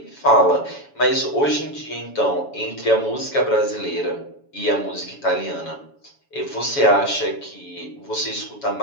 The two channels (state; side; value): late; right; 7.1 ms